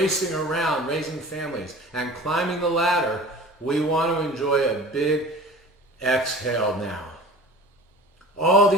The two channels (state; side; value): normal; both; correlation 0.40